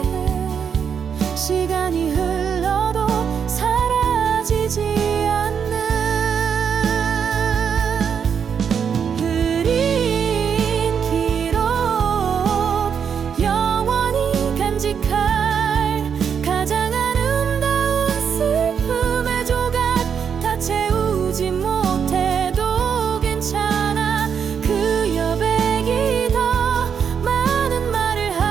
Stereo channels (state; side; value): quieter; left; 7.2 dB